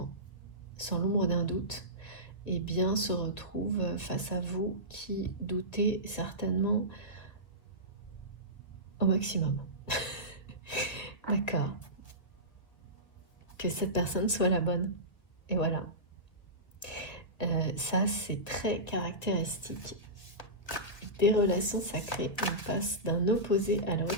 sans l'ombre d'un doute, eh bien se retrouve face à vous qui doutez certainement au maximum. D'accord. Que cette personne soit la bonne. Et voilà. Ça, c'est très caractéristique des relations sacrées. On passe d'un opposé à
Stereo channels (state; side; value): late; right; 1.7 ms